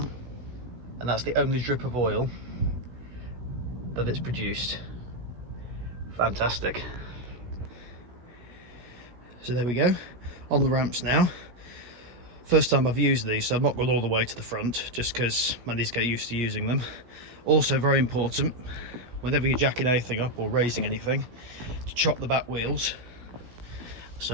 and that's the only drip of oil that it's produced. Fantastic. So there we go, on the ramps now. First time I've used these, so I've not gone all the way to the front, just because I need to get used to using them. Also very important, whenever you're jacking anything up or raising anything, to chop the back wheels.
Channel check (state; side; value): late; left; 16 ms